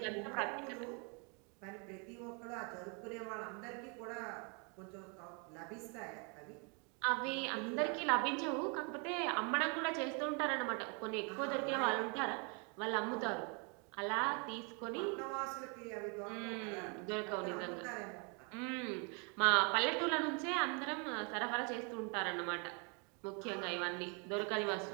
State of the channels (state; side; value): quieter; left; 35.1 dB